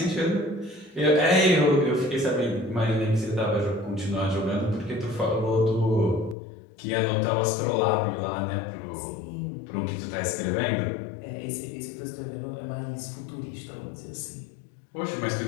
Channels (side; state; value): right; drops out; at 6.4 s